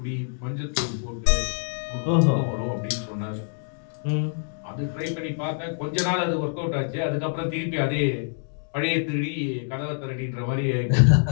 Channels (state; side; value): silent; right; digital silence